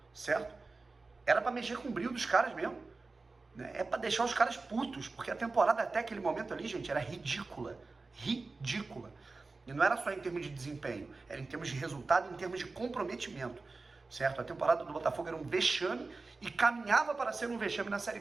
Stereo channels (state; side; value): quieter; left; 3.8 dB